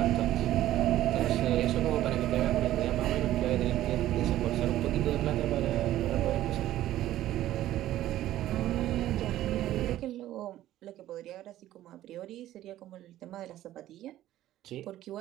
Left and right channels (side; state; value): left; quieter; 13.8 dB